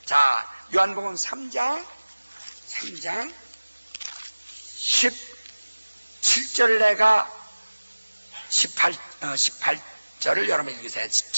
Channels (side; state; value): both; inverted; correlation -1.00